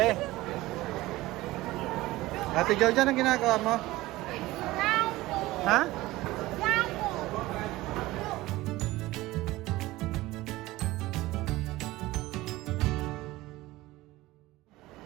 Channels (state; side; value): quieter; left; 18.4 dB